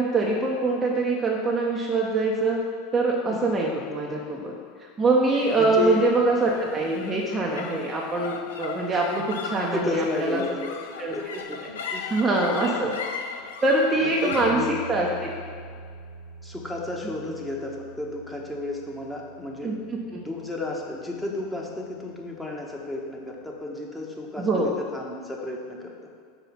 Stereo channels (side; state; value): both; normal; correlation 0.42